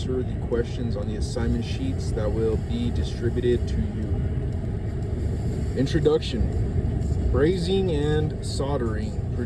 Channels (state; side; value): identical; both; correlation 1.00